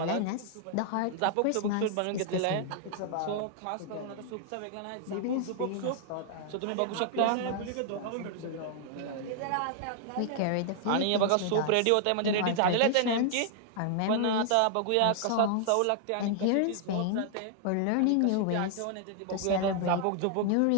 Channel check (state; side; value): different; both; correlation 0.00